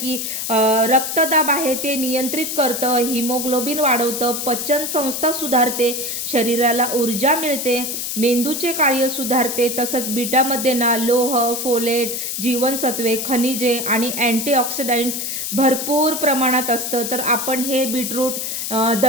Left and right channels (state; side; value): noise; left; hiss, 3 dB below the sound